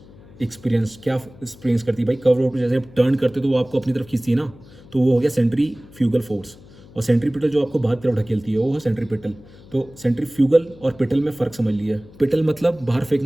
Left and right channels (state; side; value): noise; left; hum, 22 dB below the sound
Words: experience, क्या एक्सपीरियंस करती है भाई? कर्व रोड पर जैसे आप टर्न करते हो तो वो आपको अपनी तरफ खींचती है ना, तो वो हो गया सेंट्रीफ्यूगल फोर्स। और सेंट्रीपिटल जो आपको बाहर तरफ ढकेलती है वो है सेंट्रीपिटल। तो सेंट्रीफ्यूगल और पिटल में फ़र्क समझ लिया। पिटल मतलब बाहर